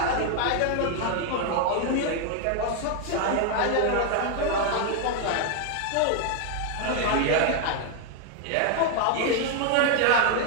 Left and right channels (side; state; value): both; different; correlation 0.00